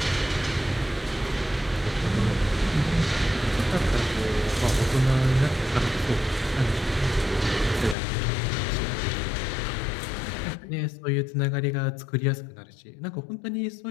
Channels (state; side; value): drops out; right; at 8.0 s